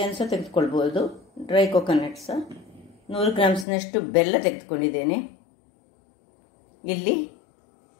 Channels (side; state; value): right; drops out; at 3.7 s